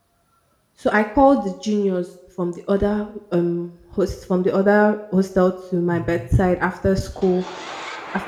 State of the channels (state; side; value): identical; both; correlation 1.00